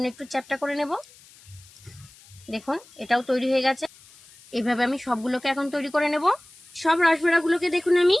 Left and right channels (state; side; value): noise; left; hiss, 24 dB below the sound